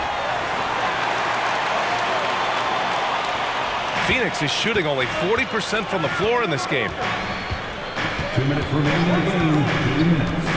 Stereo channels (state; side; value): identical; both; correlation 1.00